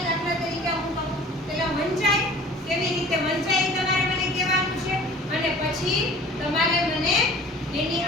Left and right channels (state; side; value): normal; both; correlation 0.46